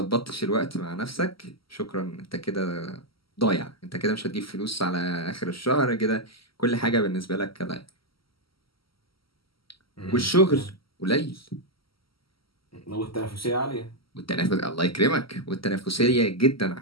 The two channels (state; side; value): late; right; 0.75 ms